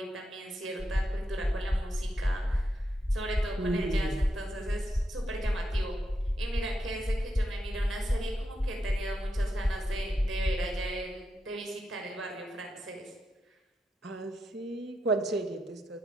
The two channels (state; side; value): normal; both; correlation 0.85